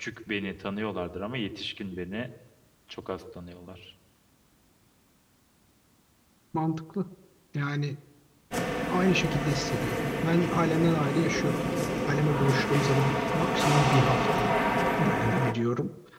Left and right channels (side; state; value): both; identical; correlation 1.00